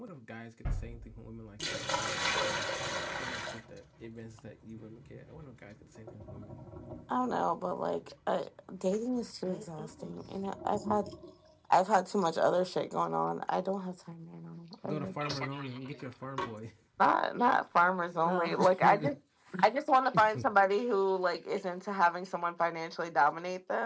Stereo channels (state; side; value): identical; both; correlation 1.00